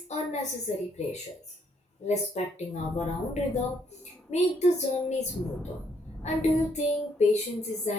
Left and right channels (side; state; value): both; normal; correlation 0.71